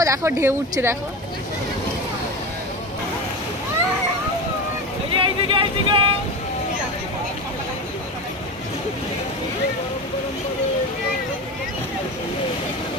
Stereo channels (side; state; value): both; normal; correlation 0.25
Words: দেখো ঢেউ উঠছে দেখো।